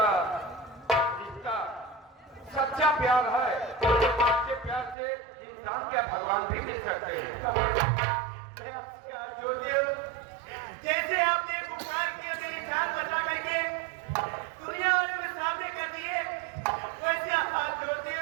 रिश्ता सच्चा प्यार है, तो सच्चे प्यार से इंसान क्या भगवान भी मिल सकते हैं। जैसे आपने पुकार किया मेरी जान बचा करके दुनिया वालों में सामने कर दिए, वैसे आप जोड़ते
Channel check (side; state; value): left; drops out; at 5.0 s